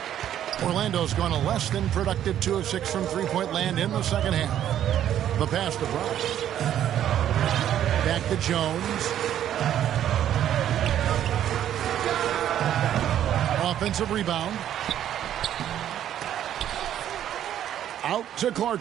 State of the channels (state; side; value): quieter; left; 10.8 dB